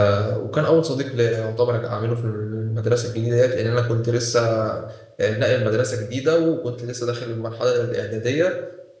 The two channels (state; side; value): identical; both; correlation 1.00